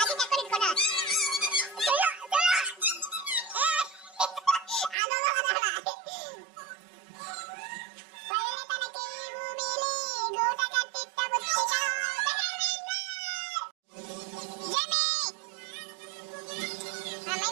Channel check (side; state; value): left; drops out; at 5.0 s